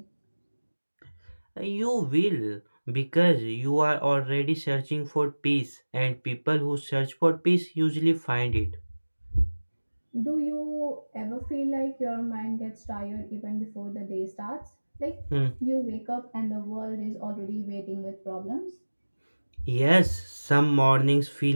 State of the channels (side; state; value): both; inverted; correlation -1.00